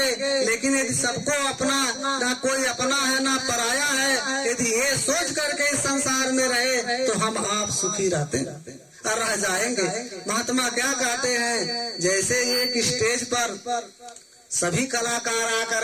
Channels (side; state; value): both; identical; correlation 1.00